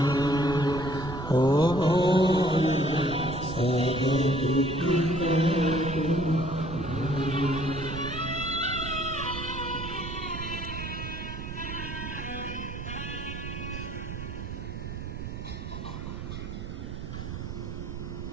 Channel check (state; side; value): noise; right; rumble, 7 dB below the sound